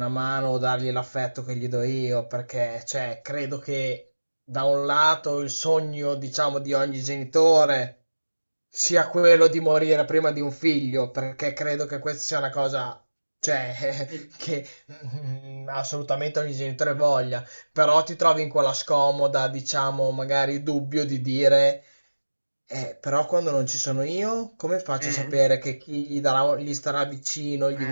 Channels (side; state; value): both; inverted; correlation -1.00